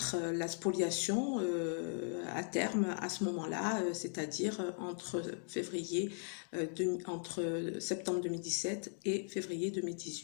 la spoliation à terme à ce moment-là, c'est-à-dire entre septembre 2017 et février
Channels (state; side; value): silent; right; 52 dB below the other